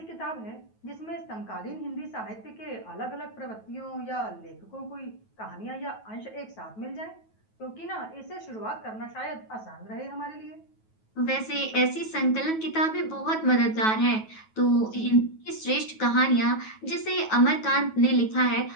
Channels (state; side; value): late; right; 9.2 ms